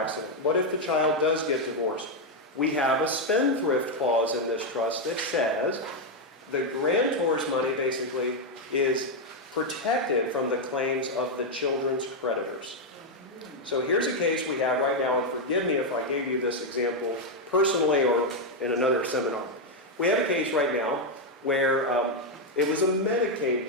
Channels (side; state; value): both; normal; correlation 0.02